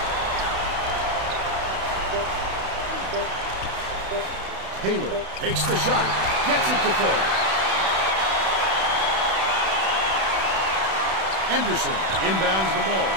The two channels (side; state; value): left; late; 31 ms